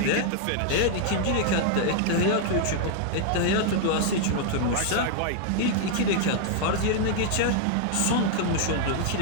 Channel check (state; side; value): different; both; correlation 0.00